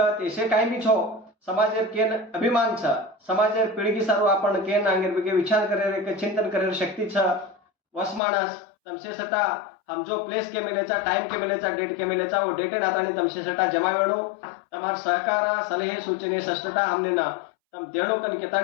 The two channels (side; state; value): right; drops out; at 8.2 s